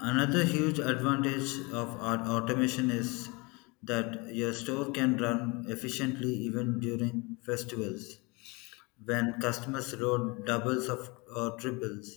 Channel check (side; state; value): right; quieter; 27.2 dB